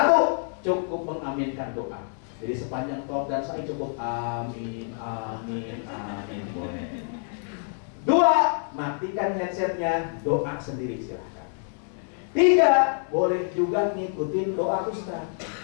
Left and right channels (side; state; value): right; silent; 55 dB below the other